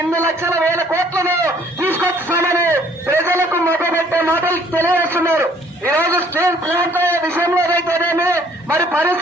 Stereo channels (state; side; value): normal; both; correlation 0.60